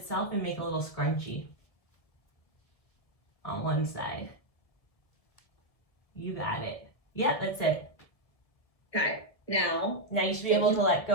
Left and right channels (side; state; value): right; late; 1.5 ms